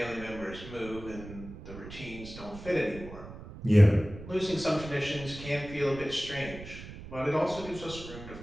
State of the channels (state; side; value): noise; right; rumble, 13 dB below the sound